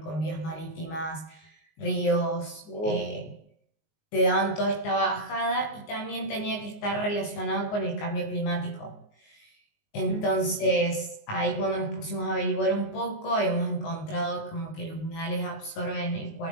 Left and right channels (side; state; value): right; late; 19 ms